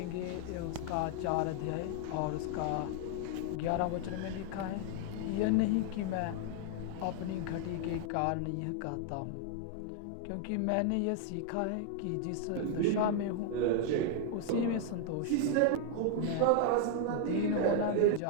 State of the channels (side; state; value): both; different; correlation 0.00